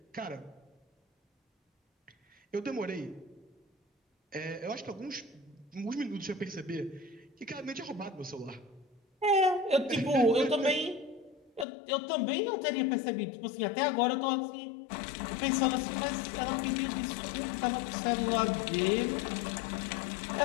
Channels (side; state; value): right; drops out; at 11.7 s